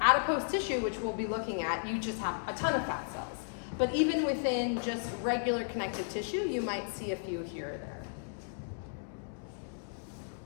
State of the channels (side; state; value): right; silent; digital silence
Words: adipose tissue, which we'll be looking at, you just have a ton of fat cells. But even within just regular connective tissue, you might see a few here or there.